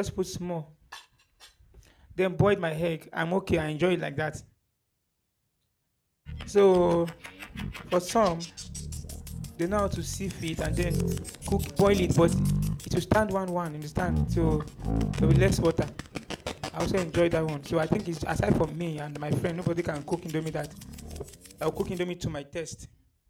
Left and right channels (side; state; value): both; identical; correlation 1.00